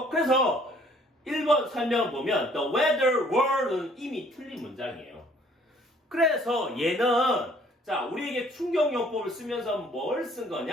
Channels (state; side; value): normal; both; correlation 0.59